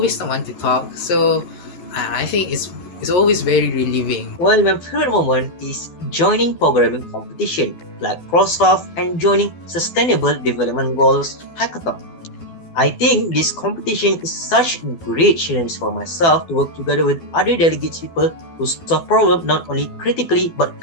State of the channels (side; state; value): right; late; 12 ms